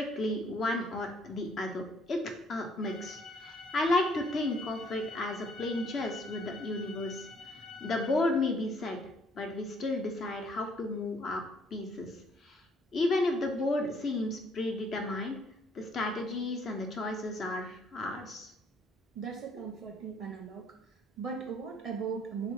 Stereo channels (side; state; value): both; normal; correlation 0.64